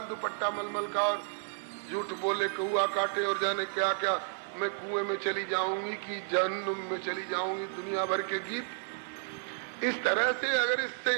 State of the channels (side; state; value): left; silent; 56 dB below the other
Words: दुपट्टा मलमल का, और झूठ बोले कौआ काटे और जाने क्या क्या, मैं कुएं में चली जाऊंगी कि जहन्नुम में चली जाऊंगी, दुनिया भर के गीत। इस तरह से अगर इससे